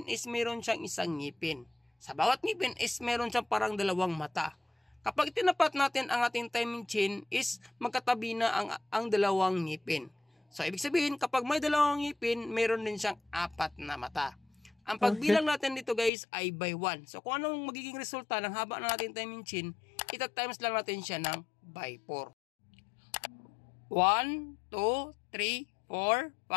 is meron siyang isang ngipin. Sa bawat ngipin is meron siyang parang dalawang mata. Kapag tinapat natin ang ating timing chain is magkatabi na ang dalawang ngipin. So ibig sabihin kapag may dalawang ngipin, meron din siyang apat na mata. Ang pagbilang natin dito guys ay by 1. So kung anong magiging resulta ng haba ng ating timing chain, ita-times lang natin siya ng by 4. 1, 2, 3, 4,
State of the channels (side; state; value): right; drops out; at 16.1 s